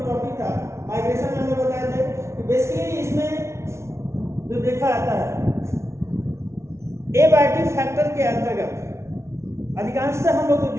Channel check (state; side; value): late; left; 0.13 ms